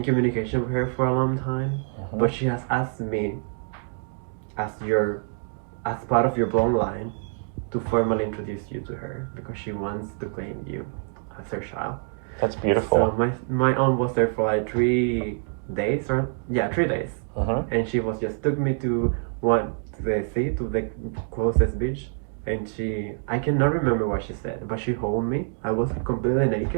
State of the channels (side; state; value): left; silent; 59 dB below the other